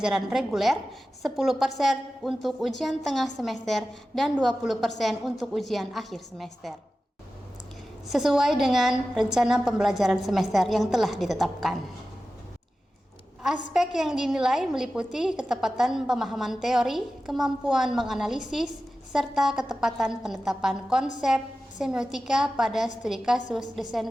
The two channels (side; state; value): both; normal; correlation 0.94